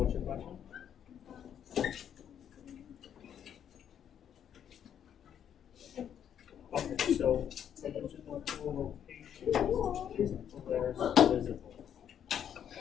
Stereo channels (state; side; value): quieter; right; 9.1 dB